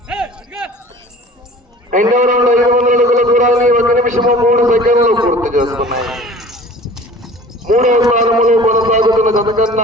రెండవ రౌండ్ 500 అడుగుల దూరాన్ని 1 నిమిషము 3 సెకండ్లు పూర్తి చేసుకున్నాయి. మూడవ స్థానంలో కొనసాగుతున్న జత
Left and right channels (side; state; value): both; normal; correlation 0.44